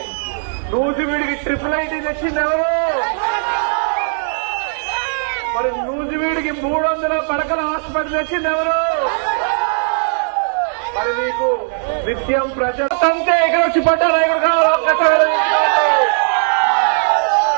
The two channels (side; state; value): left; silent; digital silence